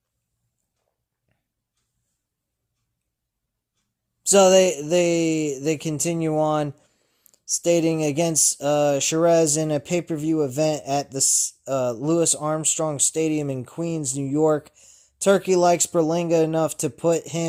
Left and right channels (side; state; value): both; identical; correlation 1.00